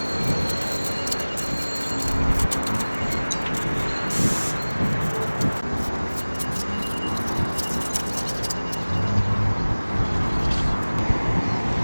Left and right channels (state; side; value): inverted; both; correlation -1.00